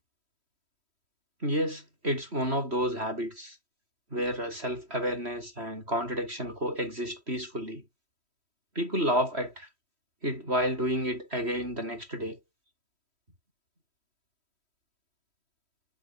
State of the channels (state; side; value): late; left; 3.1 ms